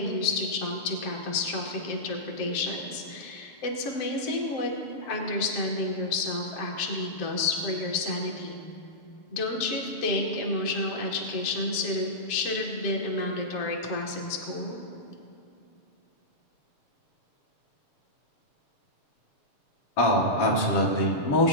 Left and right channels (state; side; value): late; right; 7.5 ms